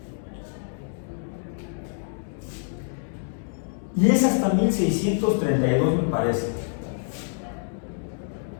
Y es hasta 1632, me parece.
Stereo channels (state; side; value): silent; right; digital silence